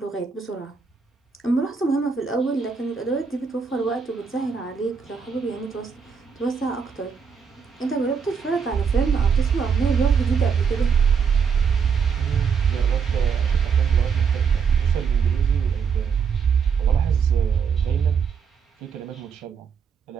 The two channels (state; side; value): quieter; left; 6.2 dB